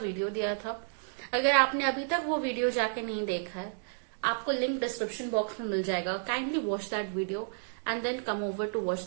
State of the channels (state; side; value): silent; left; digital silence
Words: वीडियो दिया था। अगर आपने अभी तक वो वीडियो जाके नहीं देखा है, आपको लिंक डिस्क्रिप्शन बॉक्स में मिल जाएगा। Kindly watch that video and then come over to watch